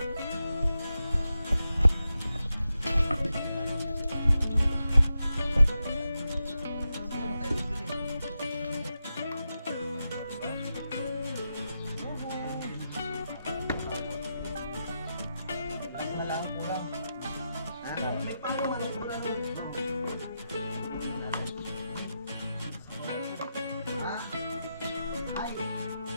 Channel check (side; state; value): both; inverted; correlation -0.88